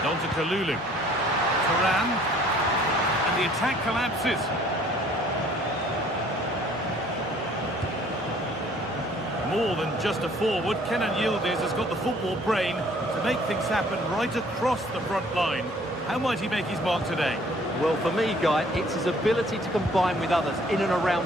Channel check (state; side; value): normal; both; correlation 0.57